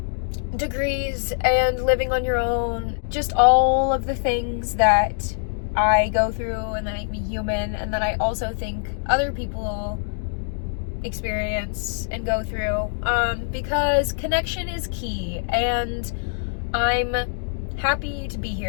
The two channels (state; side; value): silent; right; digital silence